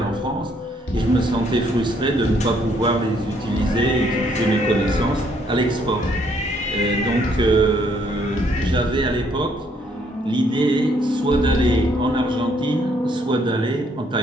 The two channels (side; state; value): both; normal; correlation 0.68